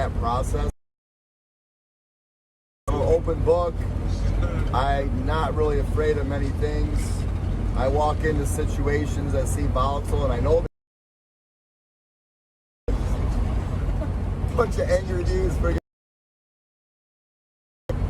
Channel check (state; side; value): identical; both; correlation 1.00